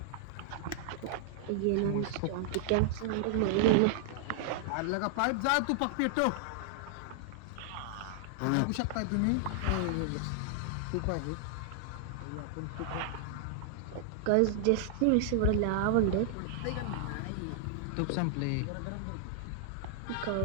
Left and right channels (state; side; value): different; both; correlation 0.00